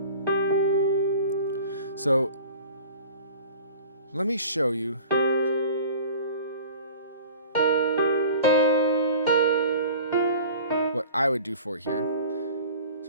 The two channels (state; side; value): inverted; both; correlation -0.42